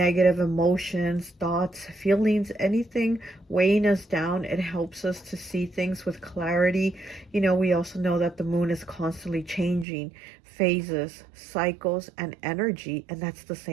emotions, thoughts, feelings, anything weighing us down. It helps us to see things with clarity. You know, we also know that the moon is constantly changing phases, cycles, and energy, and that's the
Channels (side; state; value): left; drops out; at 9.9 s